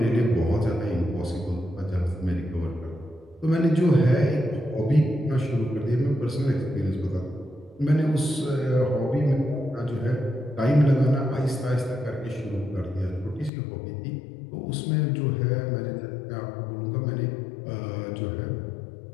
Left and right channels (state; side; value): drops out; right; at 13.5 s